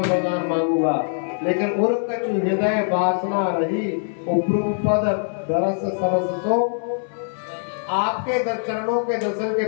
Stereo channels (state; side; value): silent; right; digital silence